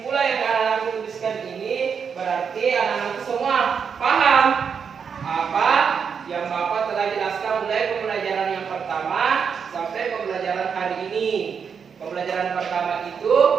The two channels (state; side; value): quieter; left; 6.6 dB